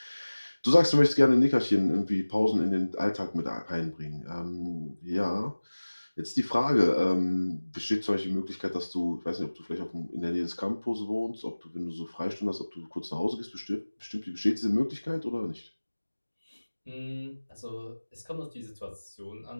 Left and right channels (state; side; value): inverted; both; correlation -1.00